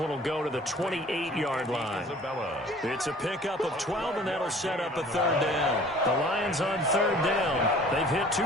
will go to the 28-yard line. It's a pickup of 12, and that'll set up a third down. The Lions on third down. They've hit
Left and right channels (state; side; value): normal; both; correlation 0.49